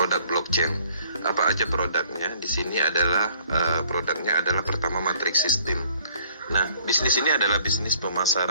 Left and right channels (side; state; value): both; inverted; correlation -0.59